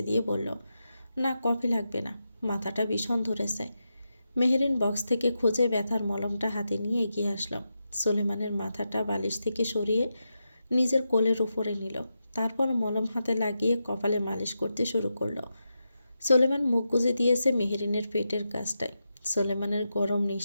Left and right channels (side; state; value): both; inverted; correlation -0.88